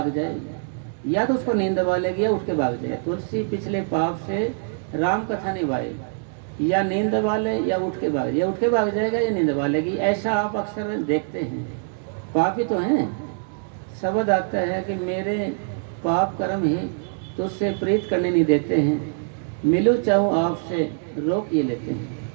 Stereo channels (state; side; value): silent; left; digital silence